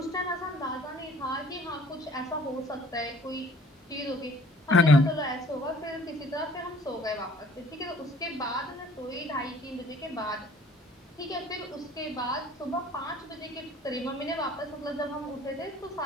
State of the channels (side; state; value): both; normal; correlation 0.54